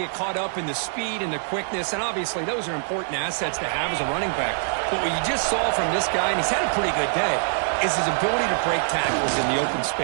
caught up in the speed and the quickness, and obviously those are important assets to have as a running back. But what you just saw from this guy, and he's had a pretty good day, is his ability to break tackles in the open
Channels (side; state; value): left; silent; 62 dB below the other